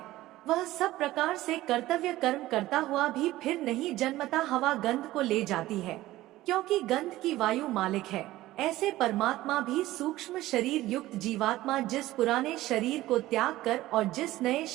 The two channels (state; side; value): quieter; left; 16.4 dB